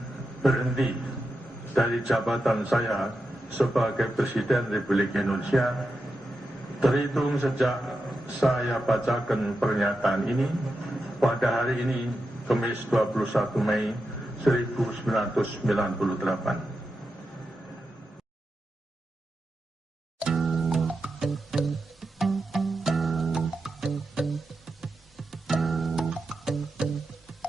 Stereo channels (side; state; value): both; normal; correlation 0.88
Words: berhenti dari jabatan saya sebagai Presiden Republik Indonesia terhitung sejak saya bacakan pernyataan ini pada hari ini, Kamis 21 Mei 1998.